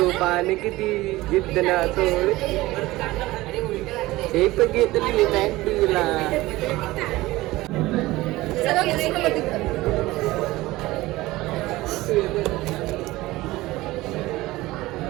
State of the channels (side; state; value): left; quieter; 18.7 dB